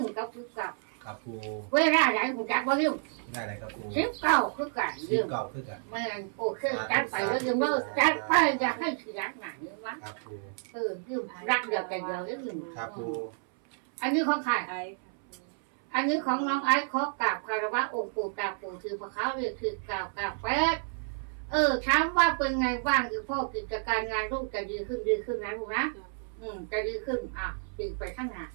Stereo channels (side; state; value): left; silent; 58 dB below the other